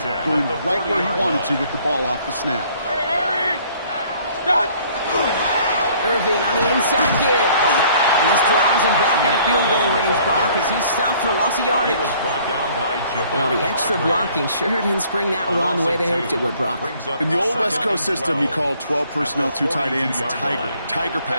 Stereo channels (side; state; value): both; inverted; correlation -0.58